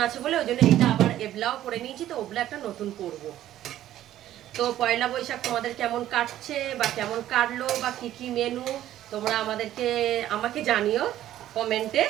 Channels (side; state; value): left; quieter; 12.8 dB